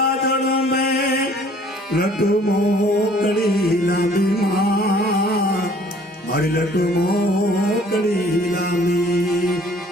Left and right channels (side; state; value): both; normal; correlation 0.55